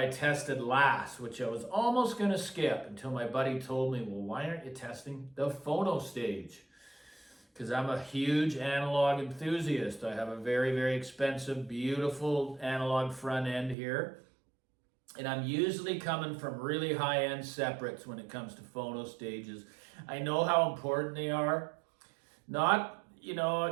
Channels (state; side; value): drops out; left; at 13.8 s